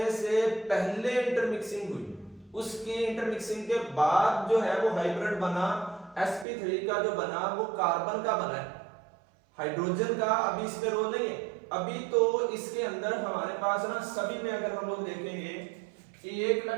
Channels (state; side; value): drops out; left; at 6.5 s